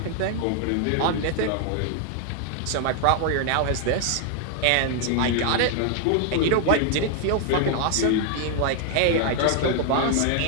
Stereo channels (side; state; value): both; different; correlation 0.00